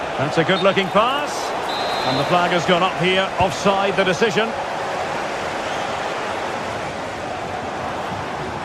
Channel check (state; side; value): identical; both; correlation 1.00